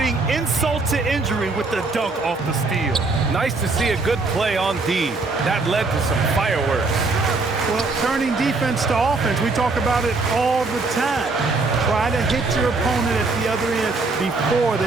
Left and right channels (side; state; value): left; quieter; 3.7 dB